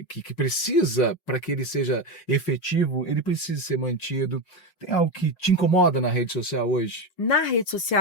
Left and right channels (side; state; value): right; late; 5.5 ms